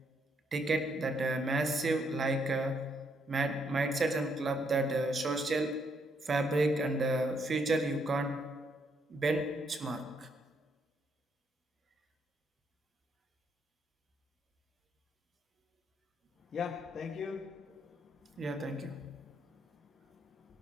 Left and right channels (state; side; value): normal; both; correlation 0.73